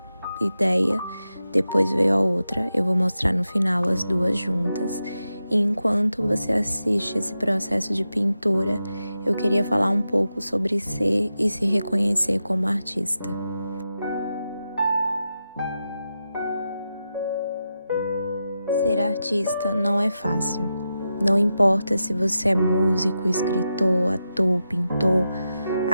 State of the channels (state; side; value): inverted; both; correlation -0.89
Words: ideia, depois veio a outra. Eu vou mostrar no final as duas juntas. E enquanto você assiste esse processo de pintura, eu queria falar um pouco sobre ser e se reconhecer como artista. Ser artista não é fácil. Não importa se você é músico, escritor, ator, pintor,